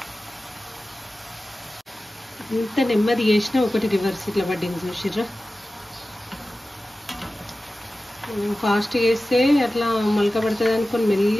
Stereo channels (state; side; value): normal; both; correlation 0.95